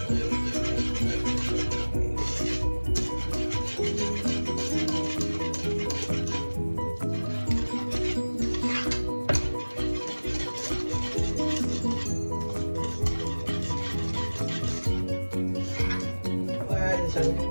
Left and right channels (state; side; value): inverted; both; correlation -1.00